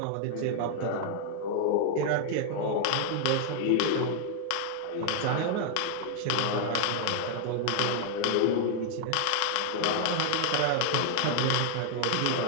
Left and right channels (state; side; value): different; both; correlation 0.00